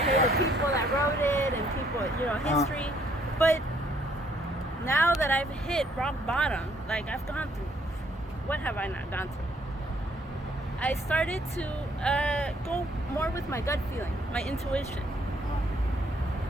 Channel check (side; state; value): both; normal; correlation 0.66